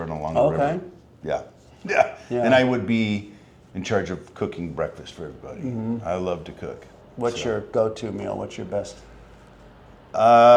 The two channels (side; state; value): both; identical; correlation 1.00